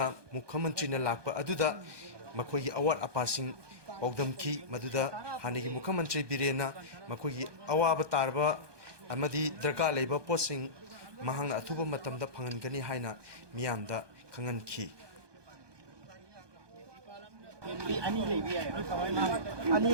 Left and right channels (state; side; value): late; left; 1.2 ms